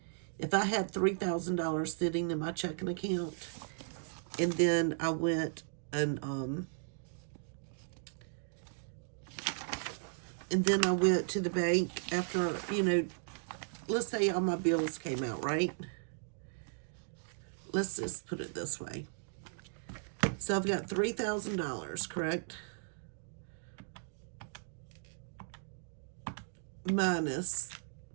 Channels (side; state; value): left; silent; digital silence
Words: If I had $3,000 sitting in my checking account, and then I went and to the bank after, let's say all my bills came out, right? Let's just put it this way. So I've got $3,000, correct? Minus